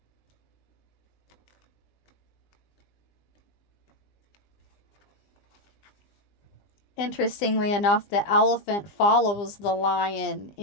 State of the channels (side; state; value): right; late; 20 ms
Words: Interestingly enough, the elephant follows the lion